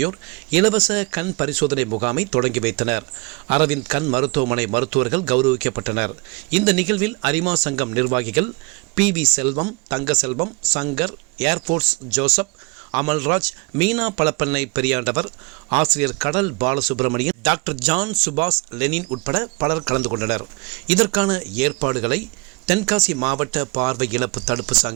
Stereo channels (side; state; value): left; quieter; 28.7 dB